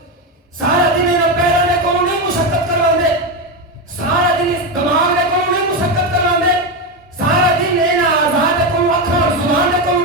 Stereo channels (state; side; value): normal; both; correlation 0.12